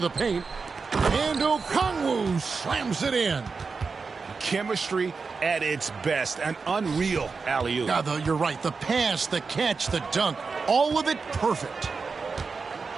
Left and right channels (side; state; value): left; quieter; 4.8 dB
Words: the paint. And Okongwu slams it in. Chemistry at its best. An unreal alley-oop. Now, though, you're right. The pass, the catch, the dunk, all of it perfect.